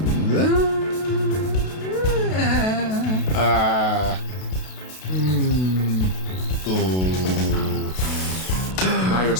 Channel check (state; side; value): late; right; 32 ms